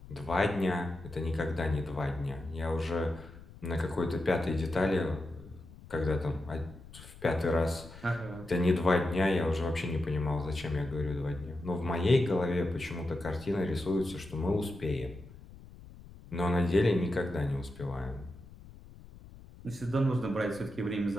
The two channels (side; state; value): left; noise; rumble, 18 dB below the sound